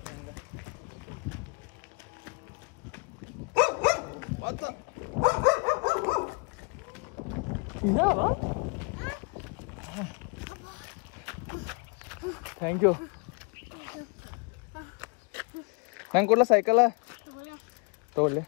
ಹಂಗ ಇದಾವ ಥ್ಯಾಂಕ್ ಯು ನಂಗೆ ಕೊಡ್ಲ ಸೈಕಲ ತಗೊಳ್ಳಿ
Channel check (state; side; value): quieter; right; 34.3 dB